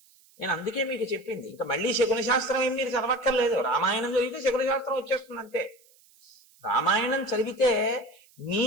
నేను అందుకే మీకు చెప్పింది, ఇంకా మళ్ళీ శకున శాస్త్రం ఏం మీరు చదవక్కర్లేదు. రామాయణం చదివితే శకున శాస్త్రం వచ్చేస్తుంది అంతే. రామాయణం చదివితే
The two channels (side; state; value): right; noise; hiss, 29 dB below the sound